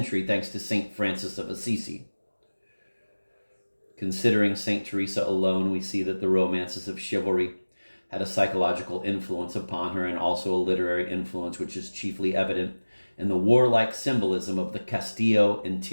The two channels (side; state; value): both; inverted; correlation -1.00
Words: thanks to Saint Francis of Assisi. Considering Saint Teresa alone, we see that the romances of chivalry had a psychological influence upon her and also a literary influence which is chiefly evident in the warlike symbolism of the Castillo